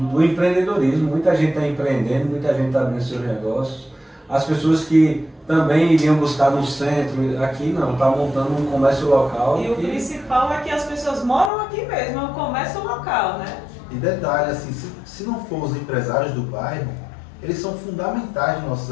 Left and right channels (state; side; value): drops out; right; at 11.5 s